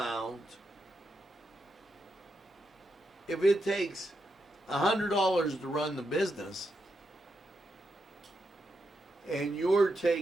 If it takes $100 to run the business and you're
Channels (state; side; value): normal; both; correlation 0.84